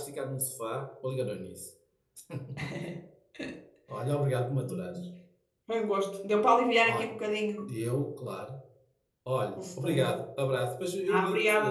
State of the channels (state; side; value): identical; both; correlation 1.00